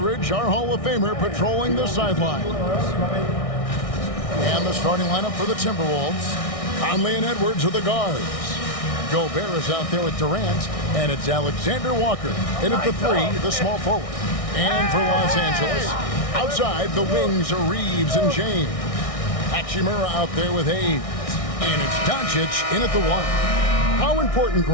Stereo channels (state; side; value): late; right; 1.6 ms